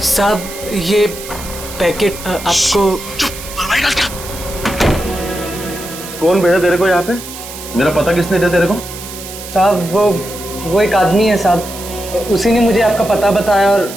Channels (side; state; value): right; noise; hiss, 12 dB below the sound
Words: साहब ये पैकेट आपको कौन भेजा तेरे को यहाँ पे? मेरा पता किसने दिया तेरे को? साहब वो एक आदमी है साहब, उसी ने मुझे आपका पता बताया और